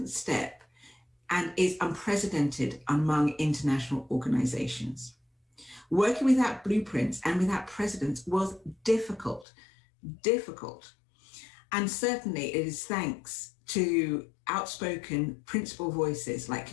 step and is unprecedented among international organizations. Working without blueprints and without precedents was difficult. And certainly it is thanks to outspoken principal voices like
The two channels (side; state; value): right; drops out; at 9.5 s